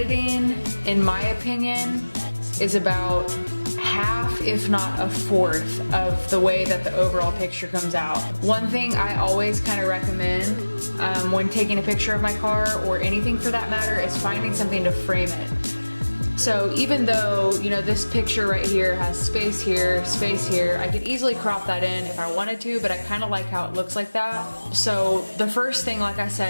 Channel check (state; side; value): inverted; both; correlation -1.00